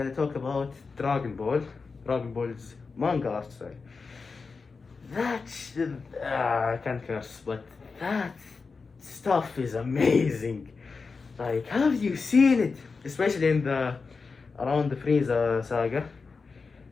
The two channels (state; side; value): quieter; right; 4.6 dB